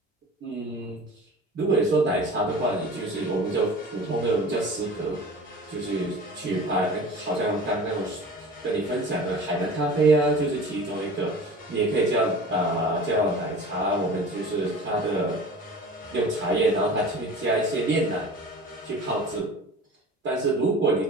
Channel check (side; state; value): both; normal; correlation 0.39